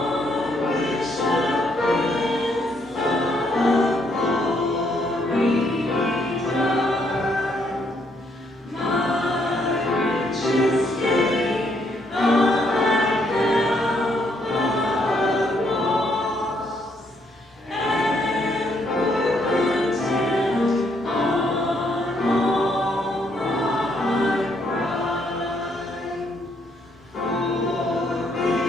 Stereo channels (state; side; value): normal; both; correlation 0.72